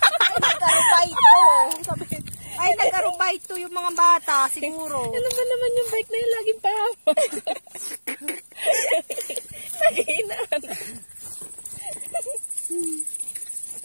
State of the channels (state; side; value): inverted; both; correlation -1.00